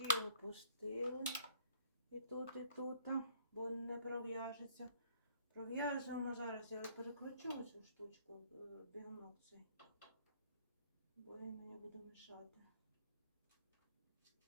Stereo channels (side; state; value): both; inverted; correlation -0.59